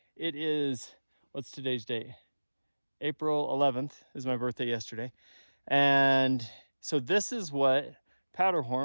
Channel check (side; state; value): both; inverted; correlation -1.00